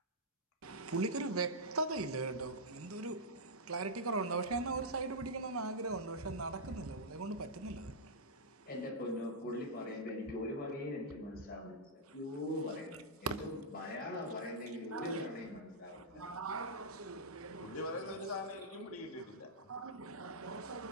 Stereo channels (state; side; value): normal; both; correlation -0.09